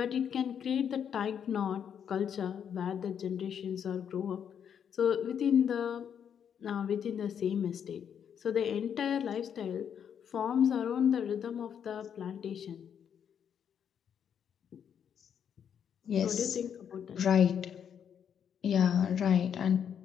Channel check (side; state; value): right; quieter; 8.2 dB